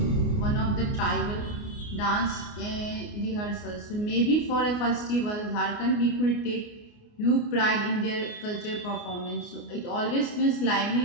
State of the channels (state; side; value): late; right; 29 ms